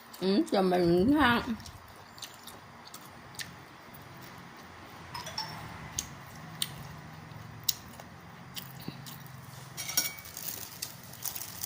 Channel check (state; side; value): identical; both; correlation 1.00